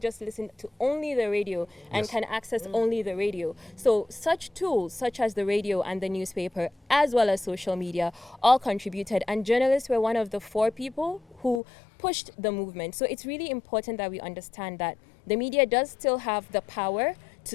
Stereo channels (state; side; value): drops out; right; at 11.6 s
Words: listen to only the radio and can access only the radio. So such tools, such as the radio and the newspaper, as well as social media, all contributed. And journalists were one of the 4 people who pushed the movement. So it's really important that we understand that the media does still have the power to